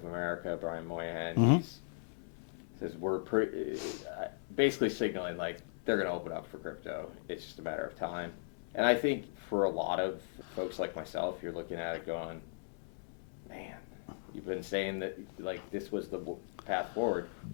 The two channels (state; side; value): quieter; right; 36.1 dB